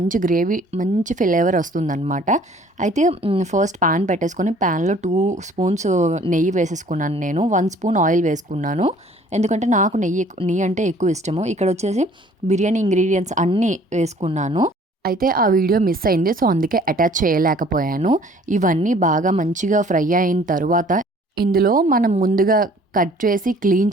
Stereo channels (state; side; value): normal; both; correlation 0.55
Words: గ్రేవీ, మంచి ఫ్లేవర్ వస్తుందన్నమాట. అయితే ఫస్ట్ ప్యాన్ పెట్టేసుకొని ప్యాన్లో 2 స్పూన్స్ నెయ్యి వేసేసుకున్నాను. నేను 1 స్పూన్ ఆయిల్ వేసుకున్నాను. ఎందుకంటే నాకు నెయ్యి అంటే ఎక్కువ ఇష్టము. ఇక్కడ వచ్చేసి బిర్యానీ ఇంగ్రీడియంట్స్ అన్నీ వేసుకున్నాను. అయితే ఆ వీడియో మిస్ అయింది, సో అందుకే అటాచ్ చేయలేకపోయాను. ఇవన్నీ బాగా మంచిగా ఫ్రై అయిన తర్వాత ఇందులో మనం ముందుగా కట్ చేసి క్లీన్